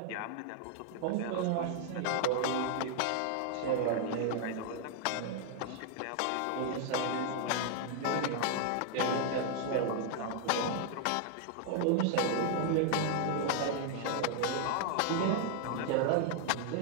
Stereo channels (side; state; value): both; different; correlation 0.00